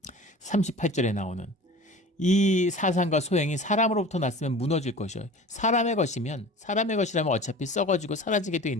38절에 나오는 이 사상과 소행이 사람으로부터 났으면 무너질 것이요. 사람의 것이라면 어차피 썩어지고 사라지게 돼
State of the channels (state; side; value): normal; both; correlation 0.39